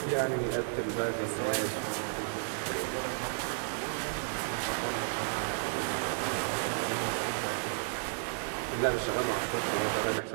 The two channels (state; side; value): silent; left; 56 dB below the other